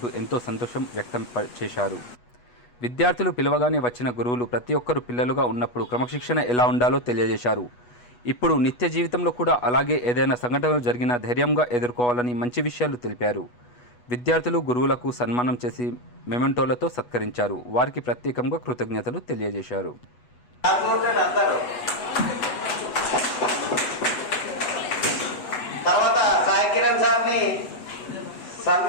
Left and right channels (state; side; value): late; right; 8.2 ms